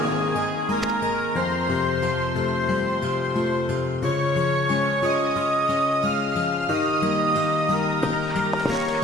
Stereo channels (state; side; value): normal; both; correlation 0.59